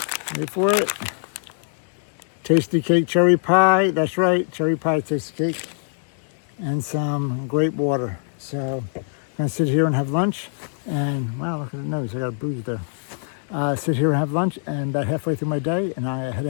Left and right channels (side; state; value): right; silent; digital silence